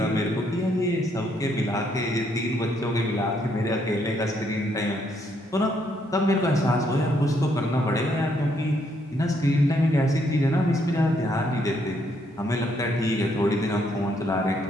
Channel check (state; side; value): normal; both; correlation 0.72